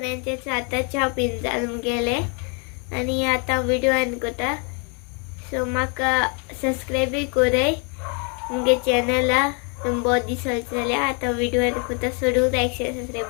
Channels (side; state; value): right; quieter; 36.3 dB